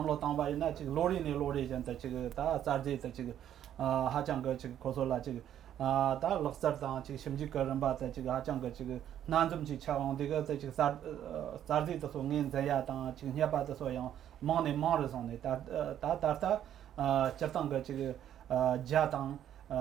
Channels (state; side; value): quieter; left; 10.6 dB